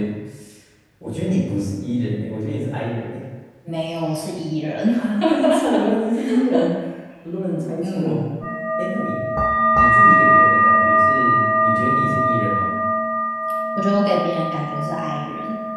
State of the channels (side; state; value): both; identical; correlation 1.00